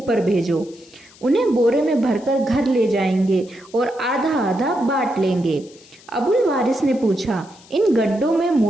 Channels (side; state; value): left; noise; hiss, 25 dB below the sound